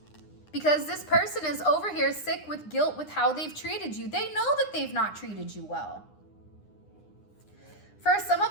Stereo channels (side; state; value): right; late; 9.8 ms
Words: Because this person is over here sick with guilt with how they've treated you. They know that they've not treated you well. For some